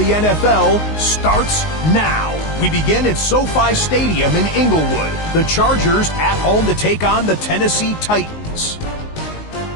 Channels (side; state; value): right; late; 19 ms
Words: NFL starts now. We begin at SoFi Stadium in Inglewood. The Chargers at home to take on the Tennessee Titans.